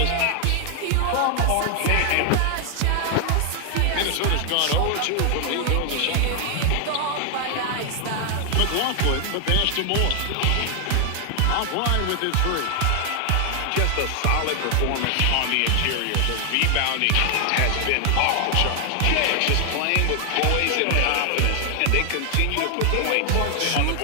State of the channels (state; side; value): different; both; correlation 0.00